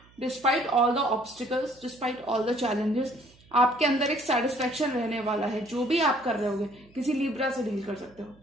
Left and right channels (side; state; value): right; noise; hum, 28 dB below the sound